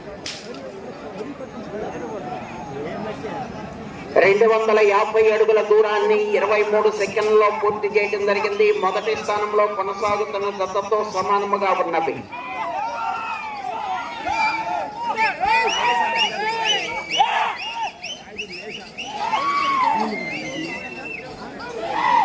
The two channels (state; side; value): identical; both; correlation 1.00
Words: రెండు 250 అడుగుల దూరాన్ని 23 సెకండ్లలో పూర్తి చేయడం జరిగింది. మొదటి స్థానంలో కొనసాగుతున్న జతతో సమానముగా ఉన్నవి.